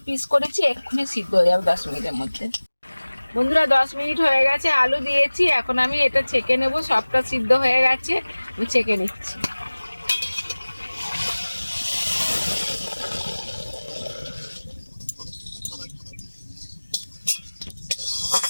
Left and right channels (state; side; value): inverted; both; correlation -1.00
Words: পিস করেছি, এক্ষুনি সিদ্ধ হয়ে যাবে 10 মিনিটের মধ্যে। বন্ধুরা, 10 মিনিট হয়ে গেছে, আলু দিয়েছি। এখন আমি এটা ছেঁকে নেব। সবটা সিদ্ধ হয়ে গেছে, আমি ছেঁকে নিচ্ছি।